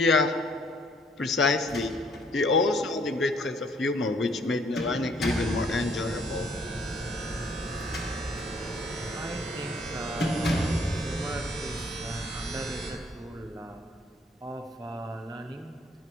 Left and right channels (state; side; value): normal; both; correlation 0.63